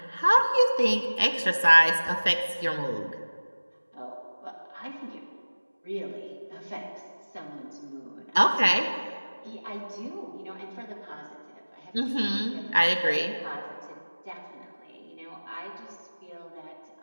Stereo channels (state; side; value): inverted; both; correlation -1.00